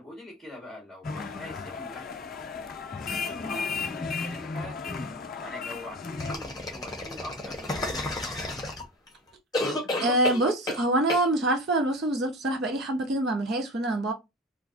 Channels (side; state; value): both; normal; correlation 0.32